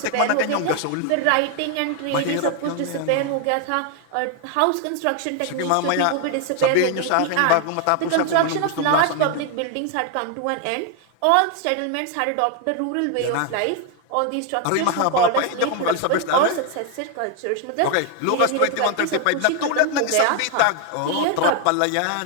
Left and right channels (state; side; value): different; both; correlation 0.00